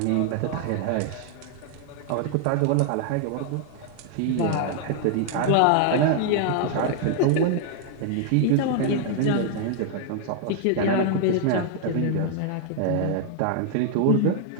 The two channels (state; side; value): different; both; correlation 0.00